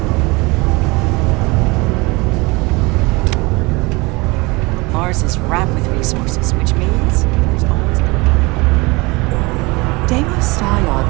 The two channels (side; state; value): left; quieter; 24.8 dB